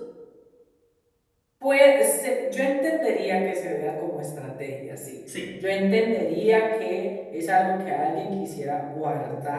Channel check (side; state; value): both; identical; correlation 1.00